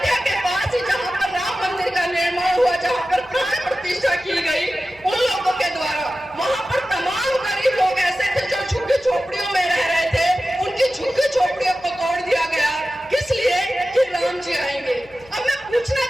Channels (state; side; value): noise; left; hum, 26 dB below the sound